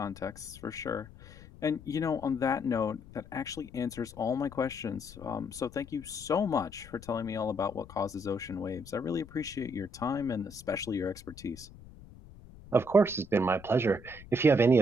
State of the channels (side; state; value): left; noise; rumble, 19 dB below the sound